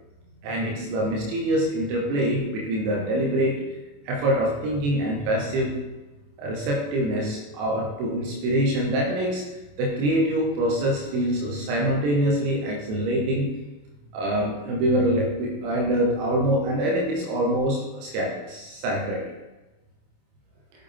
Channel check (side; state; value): left; late; 27 ms